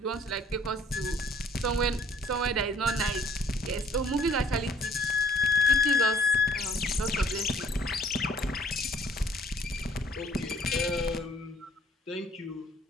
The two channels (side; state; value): both; normal; correlation 0.59